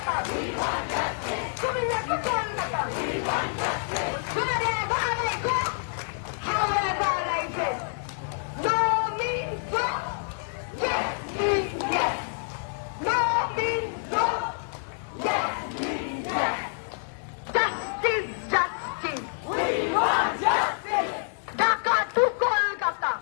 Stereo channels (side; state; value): right; silent; digital silence